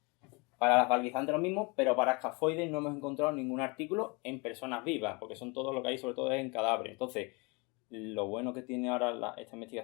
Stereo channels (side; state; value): right; quieter; 29.2 dB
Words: Para las valguizantes lo mismo, pero para escafoides no hemos encontrado ningún artículo en personas vivas, porque son todo lo que hay, sobre todo es en cadáveres. Entonces, lo bueno que tiene ahora esta